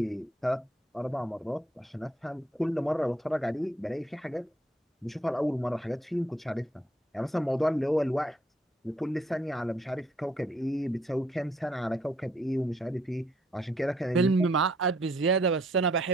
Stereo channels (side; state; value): both; normal; correlation 0.68